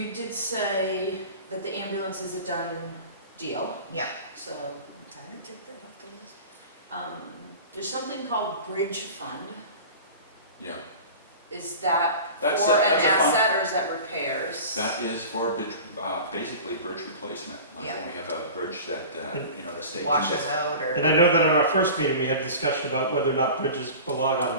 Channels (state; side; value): inverted; both; correlation -0.37